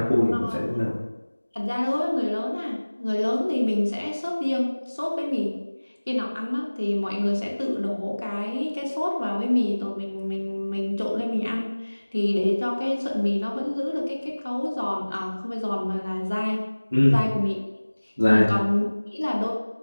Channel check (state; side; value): inverted; both; correlation -1.00